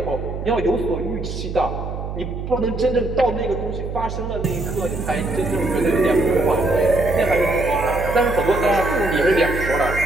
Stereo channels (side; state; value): right; noise; hum, 6 dB below the sound